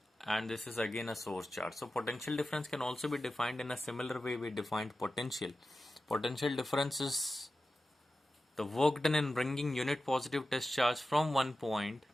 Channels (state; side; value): normal; both; correlation 0.93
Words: and this is again a source charge. So potential difference can also be defined in a similar way we defined potential. Potential difference is the work done in bringing unit positive test charge from one point